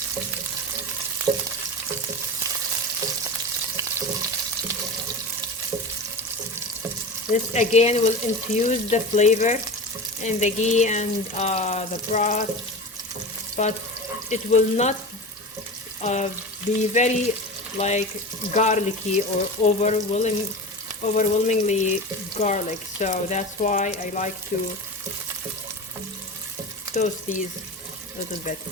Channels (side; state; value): both; normal; correlation 0.29